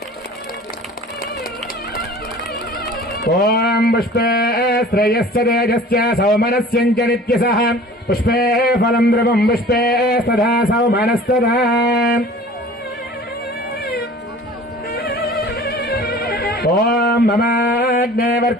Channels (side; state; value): both; normal; correlation 0.45